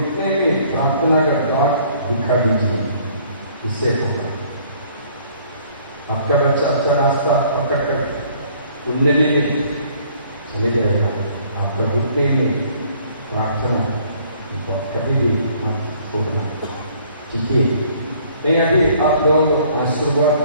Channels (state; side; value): inverted; both; correlation -0.59